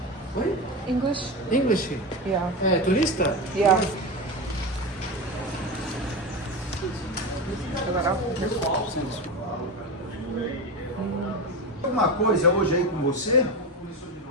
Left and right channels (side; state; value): both; normal; correlation 0.20